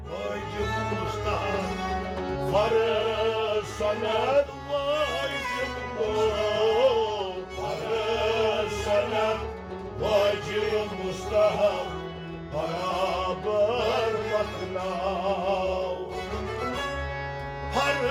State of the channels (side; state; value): both; identical; correlation 1.00